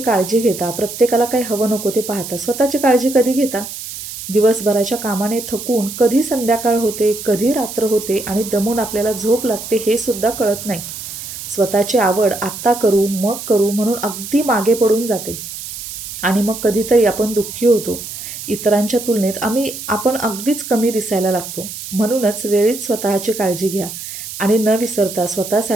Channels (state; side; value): noise; right; hiss, 10 dB below the sound